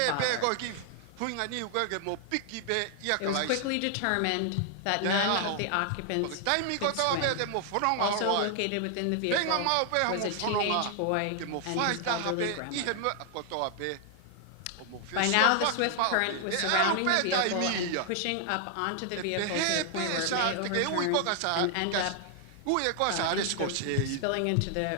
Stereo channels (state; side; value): different; both; correlation 0.00